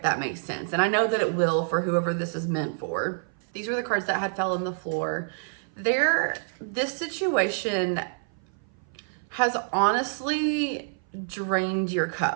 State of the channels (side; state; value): left; silent; 56 dB below the other